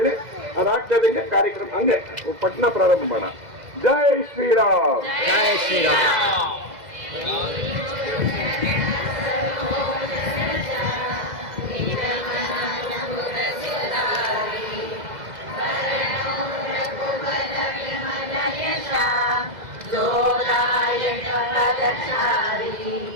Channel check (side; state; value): left; late; 2.0 ms